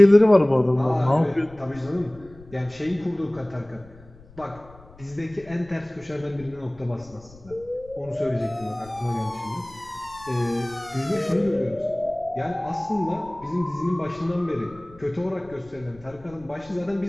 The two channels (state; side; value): noise; left; rumble, 23 dB below the sound